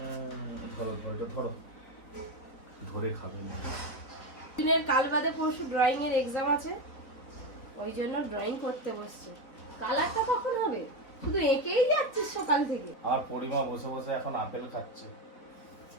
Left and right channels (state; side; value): late; right; 4.0 ms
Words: ধরো ধরো ধরো, ধরে খাবে না। দিনের কাল বাদে পরশু ড্রয়িং এর এক্সাম আছে, ওই জন্য ড্রয়িং করতে বসছে। কালারটা কখন হবে? শুধু এঁকেই যাচ্ছিস সকাল থেকে। আর পরিমা বসে বসে এখন আপেল খাচ্ছে।